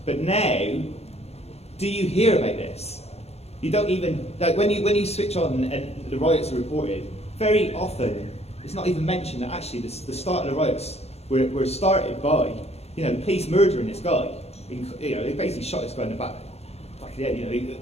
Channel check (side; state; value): right; late; 0.30 ms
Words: But now, do you hear about this? You don't even, when you switch on and the riots are reported, very often it's not even mentioned that actually the start of the riots were started by, the police murdering this guy. They basically shot this guy in the back of the